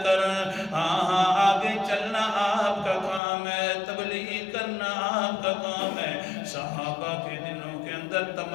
کر. ہاں آگے چلنا آپ کا کام ہے، تبلیغ کرنا آپ کا کام ہے. صحابہ کے دلوں کے اندر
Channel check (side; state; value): right; drops out; at 3.2 s